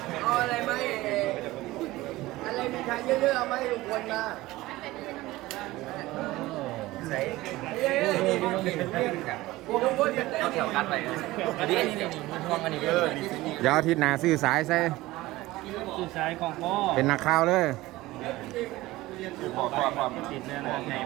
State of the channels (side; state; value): left; quieter; 18.3 dB